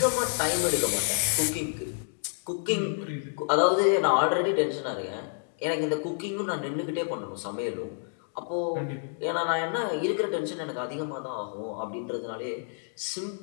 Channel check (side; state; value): right; silent; digital silence